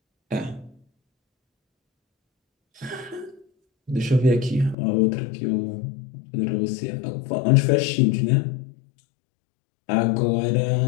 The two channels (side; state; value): right; drops out; at 4.8 s